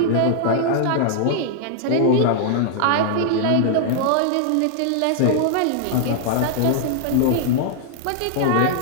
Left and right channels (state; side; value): different; both; correlation -0.01